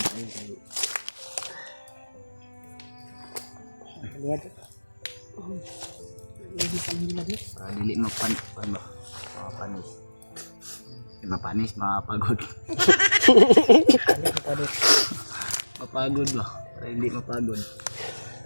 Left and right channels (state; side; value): inverted; both; correlation -1.00